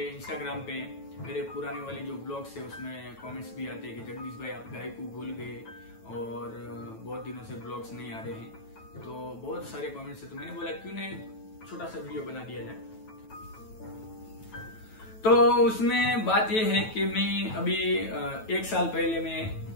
इंस्टाग्राम पे मेरे पुराने वाले जो ब्लॉग्स है उसमें कमेंट्स भी आते हैं कि जगदीश भाई आप गाय को भूल गए और बहुत दिनों से ब्लॉग्स नहीं आ रहे हैं। तो बहुत सारे कमेंट्स है, तो मैंने बोला क्यों नहीं छोटा सा वीडियो बना दिया जाए। तो उसमें बात यह है कि मैं अभी 1 साल पहले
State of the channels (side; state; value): right; late; 9.1 ms